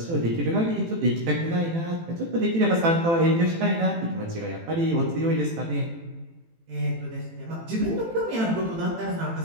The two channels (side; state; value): left; late; 18 ms